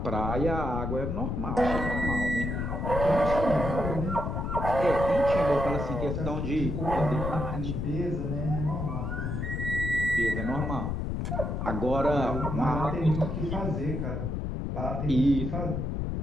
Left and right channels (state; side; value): noise; left; rumble, 2 dB below the sound